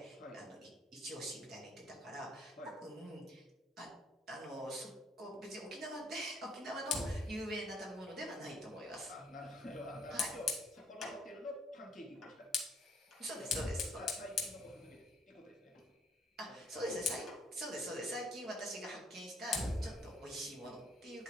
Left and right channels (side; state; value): both; normal; correlation 0.65